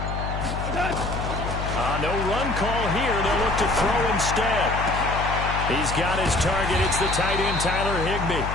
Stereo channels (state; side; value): noise; left; hum, 4 dB below the sound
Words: No run call here. They'll look to throw instead. He's got his target. It's the tight end, Tyler Higbee.